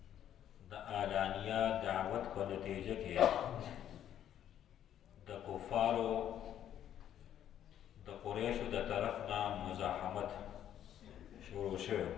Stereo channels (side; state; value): right; quieter; 10.6 dB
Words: د اعلانیه دعوت په نتیجه کې د کفارو د قریشو د طرف نه مزاحمت شروع شو